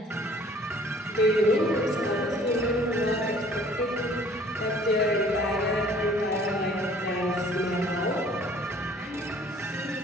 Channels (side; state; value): both; normal; correlation 0.54